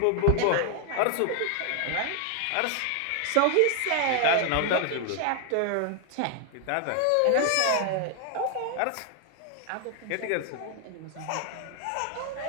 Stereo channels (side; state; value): both; different; correlation 0.00